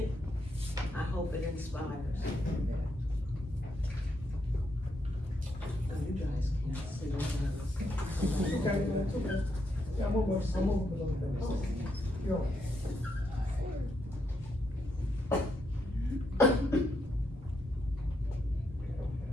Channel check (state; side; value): normal; both; correlation 0.79